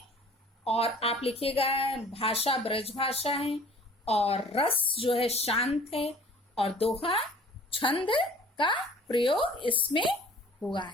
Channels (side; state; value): both; normal; correlation 0.50